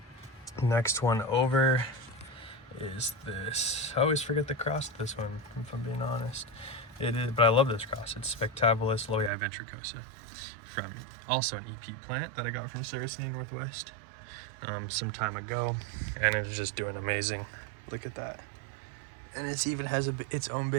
Next one over is this. I always forget the cross of this one, if I'm being honest. It is, but I love this cross. It's Spectabilis Loei ventricosa, from also an EP plant that I got from Saracen Northwest some time ago, and it's just doing amazing. Look at that. And it even has its own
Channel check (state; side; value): drops out; left; at 9.3 s